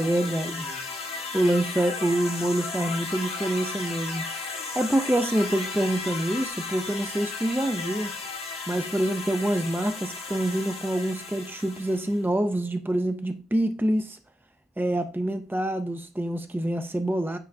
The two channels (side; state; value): both; normal; correlation 0.86